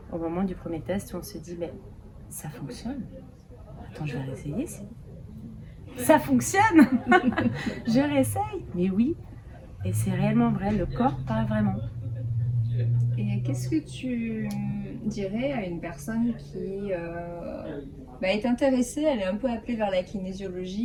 Au moment du premier test où on se dit, ça fonctionne. Attends, je vais réessayer. Ça fonctionne. Je réessaye. Mais oui. Et c'est réellement vrai, le corps parle vraiment. Et qu'est-ce que tu dirais à une personne qui est intéressée, elle est un peu appelée vers la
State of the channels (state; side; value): identical; both; correlation 1.00